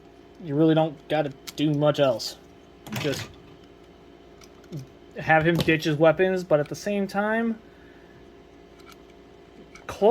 You really don't got to do much else. Just have him ditch his weapons, but at the same time,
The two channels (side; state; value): both; identical; correlation 1.00